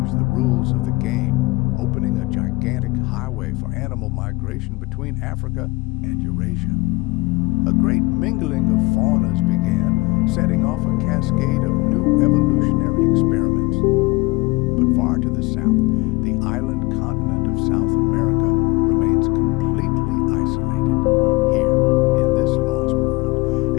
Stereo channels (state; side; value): quieter; right; 23.6 dB